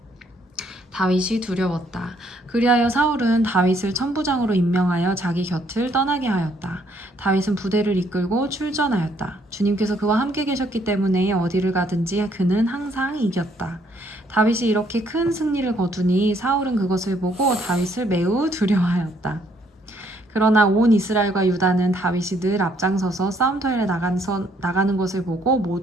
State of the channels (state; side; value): normal; both; correlation 0.67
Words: 다윗이 두려웠다. 그리하여 사울은 다윗을 천부장으로 임명하여 자기 곁을 떠나게 하였다. 다윗은 부대를 이끌고 출전하였다. 주님께서 그와 함께 계셨기 때문에 어디를 가든지 그는 항상 이겼다. 다윗이 이렇게 큰 승리를 거두니 사울은 그것을 보고 다윗을 매우 두려워하였다. 그러나 온 이스라엘과 유다는 다윗이 늘 앞장서서 싸움터에 나가는 것을 보고